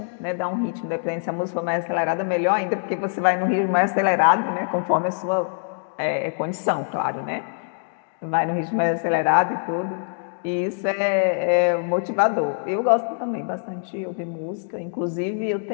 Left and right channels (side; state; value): right; silent; digital silence